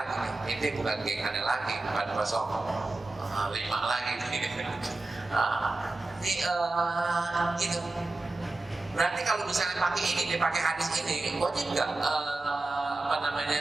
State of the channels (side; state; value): left; quieter; 3.1 dB